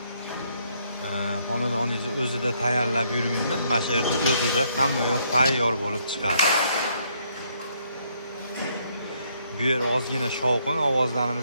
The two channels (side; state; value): both; inverted; correlation -0.70